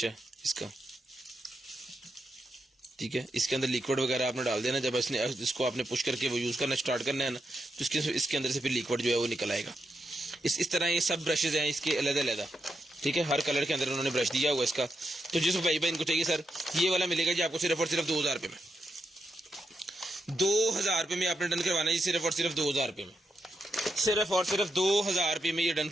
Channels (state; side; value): normal; both; correlation 0.84